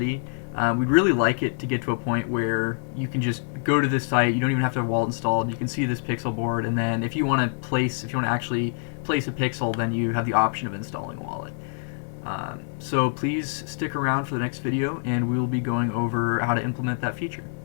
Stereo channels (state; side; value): silent; right; digital silence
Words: We'd really like it to get to a point where you can just go to this site, you don't even have to have a wallet installed, you can see this pixel board, and then if you want to actually place a pixel, then you have the option of installing a wallet. So please stick around for the next video, and we will be going over how to implement that feature.